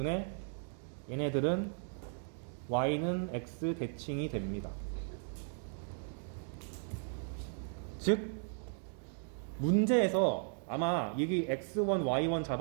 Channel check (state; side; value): silent; left; 54 dB below the other